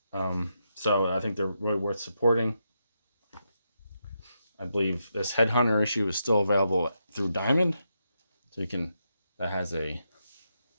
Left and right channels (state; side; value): inverted; both; correlation -0.83